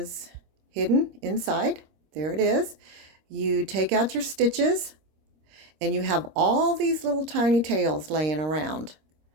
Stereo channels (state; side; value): late; left; 26 ms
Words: hidden inside. There it is. You take out your stitches, and you have all these little tiny tails laying around